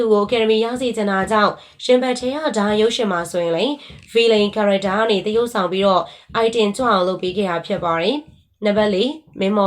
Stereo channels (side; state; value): both; identical; correlation 1.00